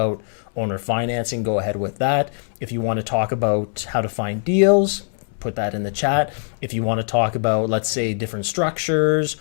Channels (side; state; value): right; silent; 64 dB below the other